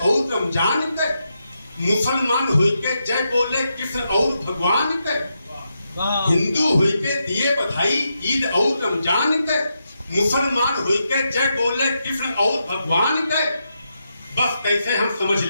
रमजान के, मुसलमान होके जय बोले कृष्ण और भगवान के। हिंदू होके दिए बधाई ईद और रमजान के, मुसलमान होके जय बोले कृष्ण और भगवान के। बस कैसे हम समझ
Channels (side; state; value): both; inverted; correlation -0.84